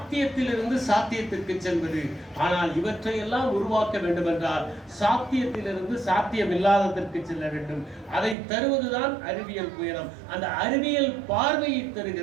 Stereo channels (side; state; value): left; drops out; at 8.3 s